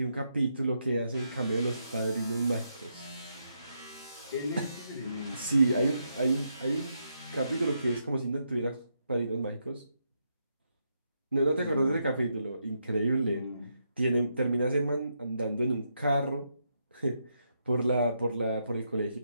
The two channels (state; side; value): inverted; both; correlation -0.80